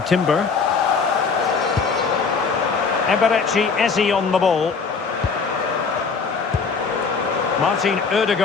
Timber. Eberechi Eze on the ball. Martin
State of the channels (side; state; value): right; quieter; 5.2 dB